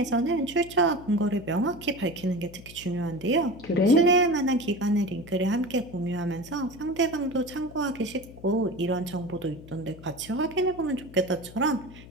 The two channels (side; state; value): left; noise; hum, 18 dB below the sound